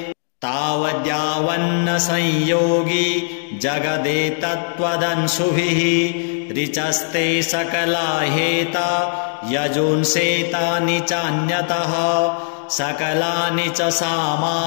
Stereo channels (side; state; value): right; silent; digital silence